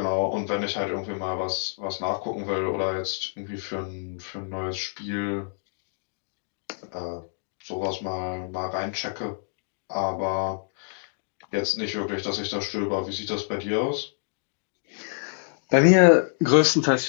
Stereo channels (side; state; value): right; silent; digital silence